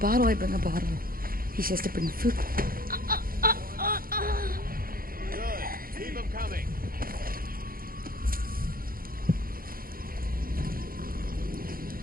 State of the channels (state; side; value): late; left; 0.42 ms